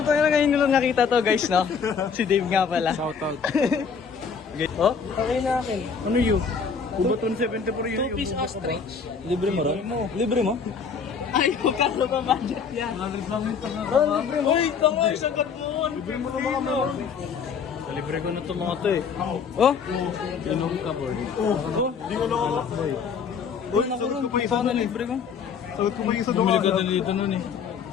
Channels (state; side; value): quieter; right; 6.1 dB